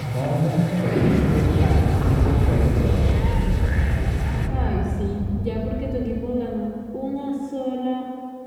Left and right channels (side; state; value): both; identical; correlation 1.00